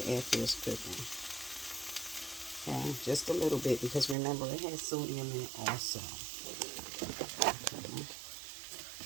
after it's cooking. Okay, just a little bit because remember it has sodium in it also. Okay.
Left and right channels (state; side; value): drops out; left; at 4.2 s